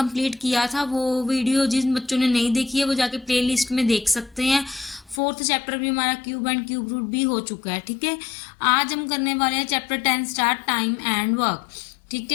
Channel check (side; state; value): right; drops out; at 5.2 s